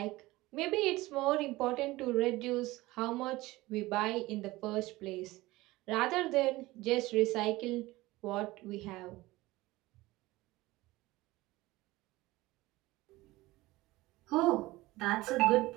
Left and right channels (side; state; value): left; quieter; 19.3 dB